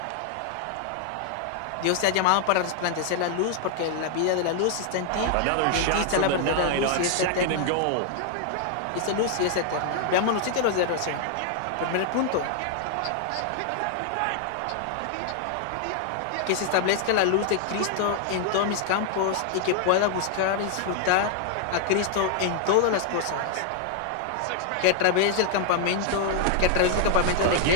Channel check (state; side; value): different; both; correlation 0.00